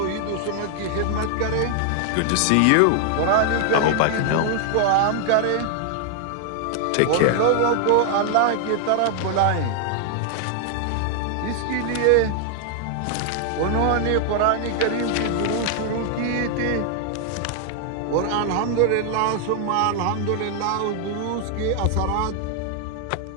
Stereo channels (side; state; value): both; different; correlation 0.00